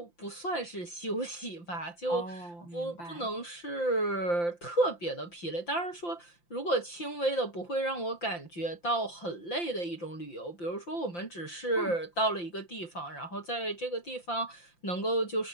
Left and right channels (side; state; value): right; late; 5.8 ms